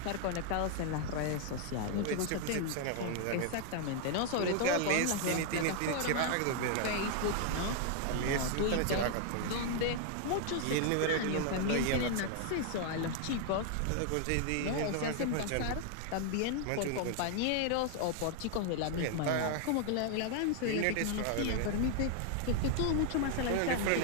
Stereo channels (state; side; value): different; both; correlation 0.00